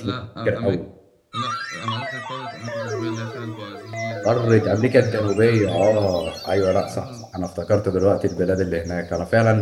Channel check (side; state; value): both; identical; correlation 1.00